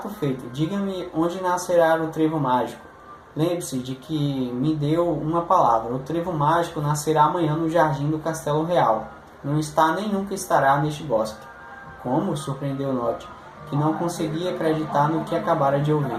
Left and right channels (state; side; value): identical; both; correlation 1.00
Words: feito. Diga-me onde nascerá o trevo mágico. Lembre-se de que me deu uma palavra. O trevo mágico nascerá amanhã no jardim do Castelo Real. Não está nem nunca estará neste bosque. Como? Surpreendeu Nod, que não conseguia acreditar no que acabara de ouvir.